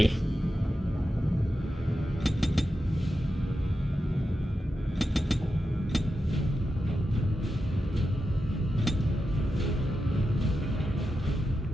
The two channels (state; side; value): normal; both; correlation 0.89